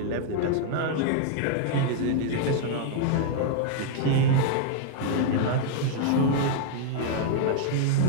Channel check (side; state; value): both; different; correlation -0.01